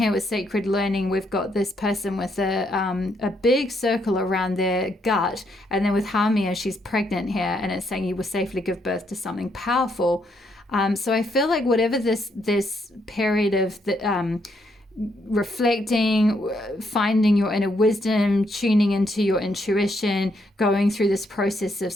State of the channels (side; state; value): both; normal; correlation 0.75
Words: with sacred learning, we've got this person with a big circle around their gut, and then with Hamia, she's pregnant here, and it's saying you will safely give birth to something powerful. So I feel like whatever this period of the reflecting, finding your inner wisdom, tuning into your intuition, going through this process of